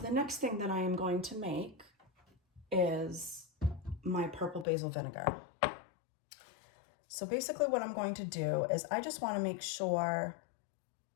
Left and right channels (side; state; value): right; drops out; at 4.7 s